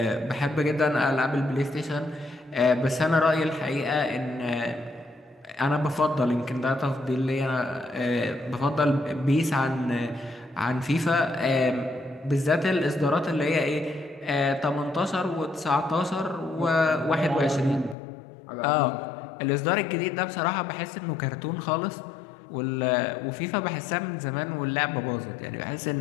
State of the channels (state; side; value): drops out; right; at 17.9 s